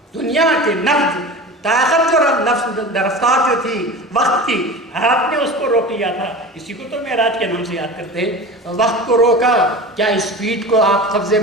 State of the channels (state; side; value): normal; both; correlation 0.33